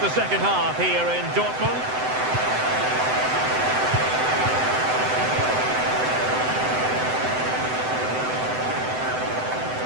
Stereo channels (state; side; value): late; left; 7.9 ms